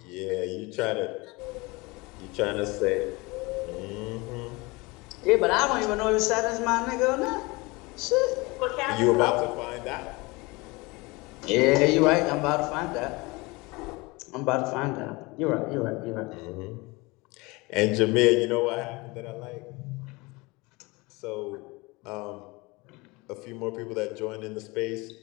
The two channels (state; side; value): quieter; right; 24.5 dB